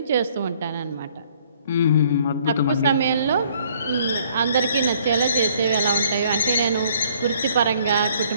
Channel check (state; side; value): inverted; both; correlation -0.62